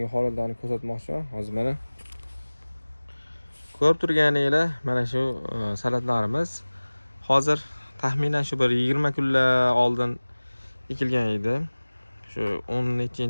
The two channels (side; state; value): both; inverted; correlation -1.00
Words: holatlarni ko'rsatmoqchiman. Hozir mana ko'rib turganinglar, mana shu salatlarimiz hozir taxminan shu bir 20 kunlar oldin ekilgan edi. Shu